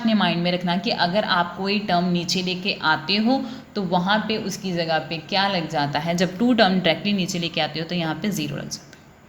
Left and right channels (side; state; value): both; identical; correlation 1.00